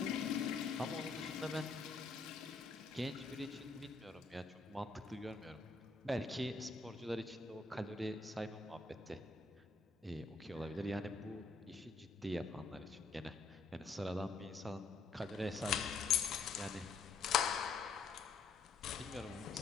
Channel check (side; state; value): right; quieter; 4.1 dB